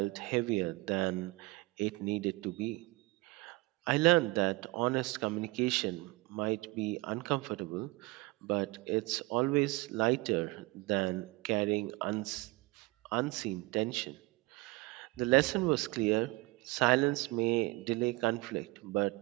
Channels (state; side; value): quieter; left; 22.7 dB